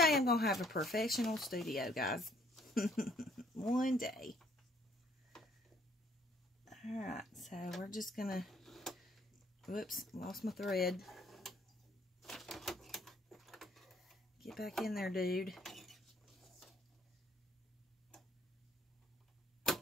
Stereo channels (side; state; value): both; normal; correlation 0.63